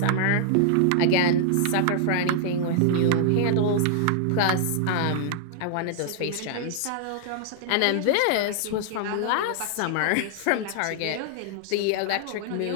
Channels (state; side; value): different; both; correlation -0.01